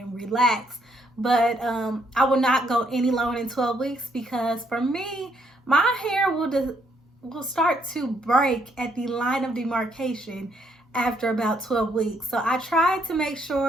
relax. But I will not go any longer than 12 weeks because for me, my hair will start to break at the line of demarcation after about 12 weeks. So I try to make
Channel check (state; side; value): normal; both; correlation 0.71